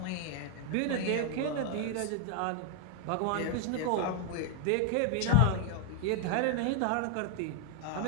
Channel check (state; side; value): different; both; correlation 0.00